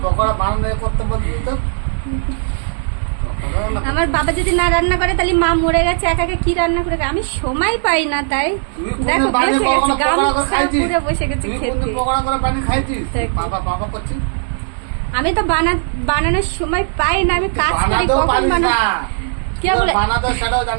পকোড়া বানানো করতে বলবি তো। আমার বাবা যদি না রান্না করে তাহলে মা মরে গেছে, একা একা কি রান্না করে? আমি সময় পাই না, তাই দেখো বসে গেছে, গামছা পুরো বসে গেছে খেতে। আমি তো বানানোর সময় পাই না, আমি কাজ করি। কখন বানাবো? কে বলে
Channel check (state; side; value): silent; left; digital silence